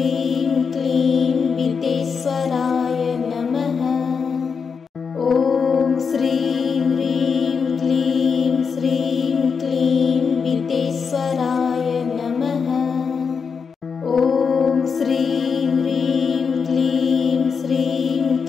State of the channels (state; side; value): quieter; right; 5.8 dB